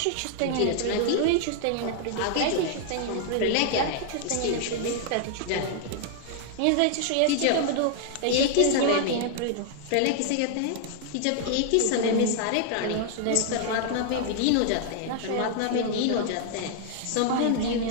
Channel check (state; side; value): different; both; correlation 0.00